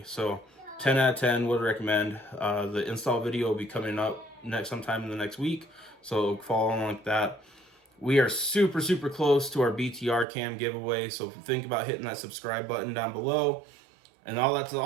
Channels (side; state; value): left; drops out; at 10.2 s